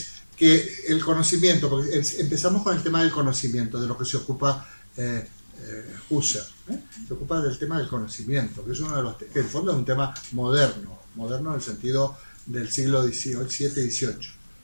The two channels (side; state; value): both; inverted; correlation -1.00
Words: que el conocimiento, porque empezamos con el tema del conocimiento, de lo que se ocupa Husserl. Se ocupa del tema del conocimiento, que es uno de los que en el fondo es un tema moderno en el sentido del siglo XVII y XVIII.